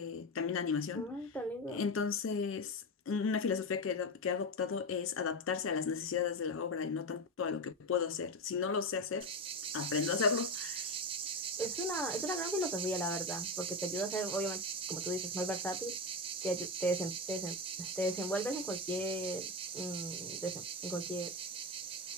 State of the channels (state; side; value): normal; both; correlation 0.16